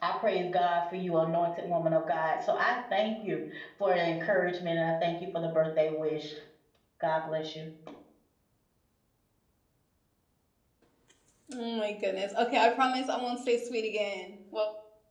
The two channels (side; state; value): both; identical; correlation 1.00